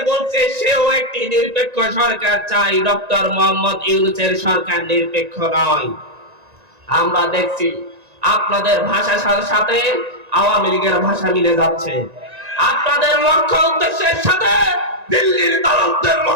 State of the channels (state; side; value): late; left; 1.9 ms